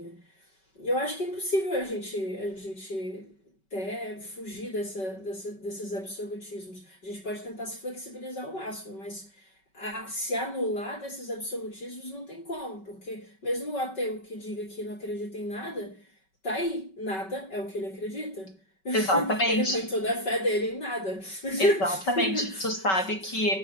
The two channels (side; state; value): right; late; 5.3 ms